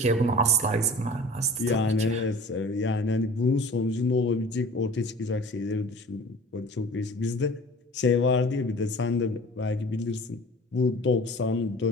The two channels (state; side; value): normal; both; correlation 0.43